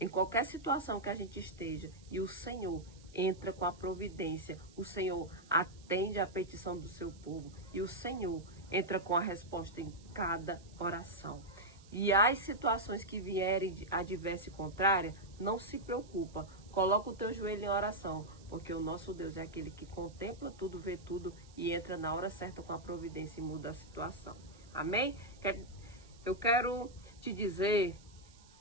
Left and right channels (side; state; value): right; noise; hiss, 25 dB below the sound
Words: em qualquer situação que a gente esteja, e o Senhor entra com a providência, o Senhor atende a petição do seu povo, e o Senhor entra com a resposta em cada oração. E as situações que vierem adversa e contrária, não se preocupa, coloca o teu joelho em oração, porque o nosso Deus é aquele que contempla tudo, vê tudo e entra na hora certa com a providência e muda a situação. Amém? Eu quero te dizer